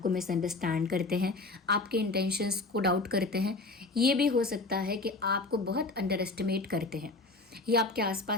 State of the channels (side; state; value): right; quieter; 3.3 dB